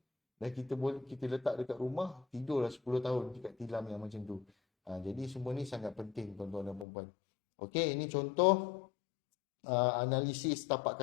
dan kita letak dekat rumah, tidurlah 10 tahun dekat tilam yang macam tu. Jadi semua ni sangat penting, tuan-tuan dan puan-puan. Okey, ini contoh analisis tapak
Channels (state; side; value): drops out; right; at 6.9 s